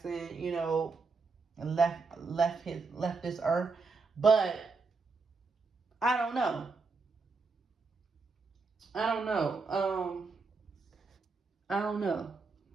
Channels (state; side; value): quieter; left; 4.3 dB